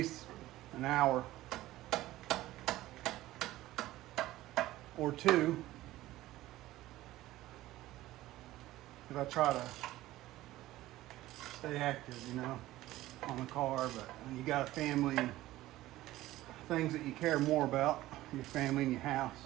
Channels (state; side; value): quieter; left; 16.1 dB